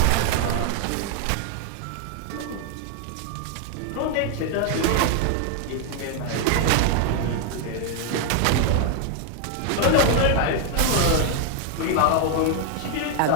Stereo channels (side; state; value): both; different; correlation 0.00